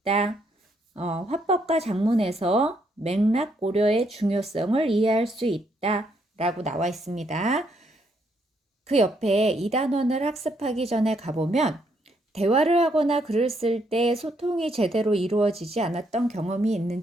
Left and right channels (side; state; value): both; normal; correlation 0.73